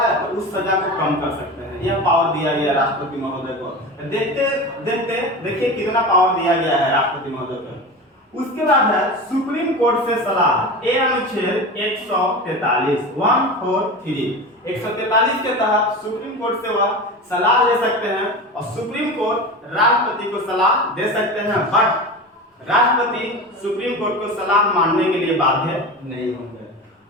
तो उस सजा को कम कर सकते हैं, यह पावर दिया गया राष्ट्रपति महोदय को। देखते देखते देखिए कितना पावर दिया गया है राष्ट्रपति महोदय को। उसके बाद है सुप्रीम कोर्ट से सलाह, ये अनुच्छेद 143 143 के तहत सुप्रीम कोर्ट से वह सलाह ले सकते हैं और सुप्रीम कोर्ट राष्ट्रपति को सलाह दे सकते हैं, बट राष्ट्रपति सुप्रीम कोर्ट को सलाह मानने के लिए बाध्य नहीं होंगे।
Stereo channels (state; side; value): normal; both; correlation 0.28